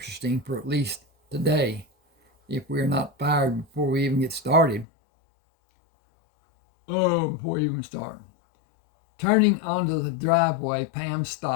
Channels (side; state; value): right; drops out; at 4.9 s